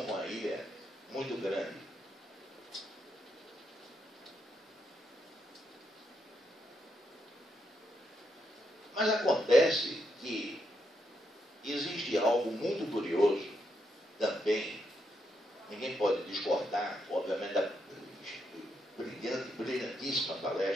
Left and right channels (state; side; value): normal; both; correlation 0.80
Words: com a ilha muito grande. Mas acontece que existe algo muito curioso também, ninguém pode discordar, obviamente, da brilhantíssima